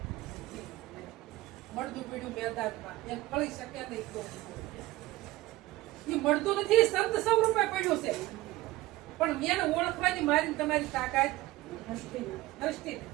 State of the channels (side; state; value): left; quieter; 18.4 dB